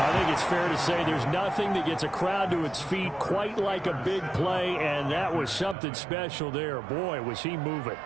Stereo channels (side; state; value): left; drops out; at 5.8 s